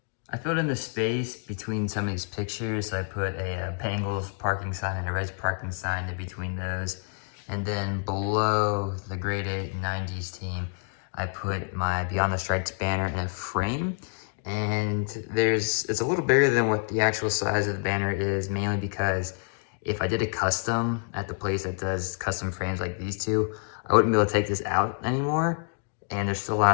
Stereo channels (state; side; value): silent; right; 56 dB below the other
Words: I filled in the space between some of these pictures. So I put a Bengals parking sign and a Reds parking sign in between those. And then below the grade 8 90s team, I put my Beyond the Stripes banner in a frame. And it's a little bigger than what the actual size of the banner is, mainly because if I did a custom at the place that does custom frames like these two, I wouldn't be able to take this out anymore. And there's still a lot